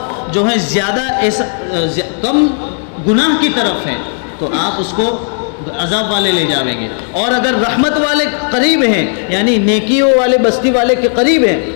جو ہے زیادہ کم گناہ کی طرف ہے، تو آپ اس کو عذاب والے لے جاویں گے، اور اگر رحمت والے قریب ہیں، یعنی نیکیوں والے بستی والے کے قریب ہیں،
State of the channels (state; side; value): silent; right; 57 dB below the other